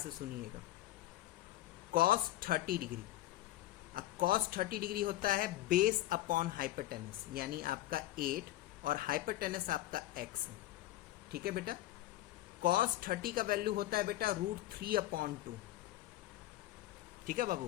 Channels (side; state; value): right; quieter; 15.4 dB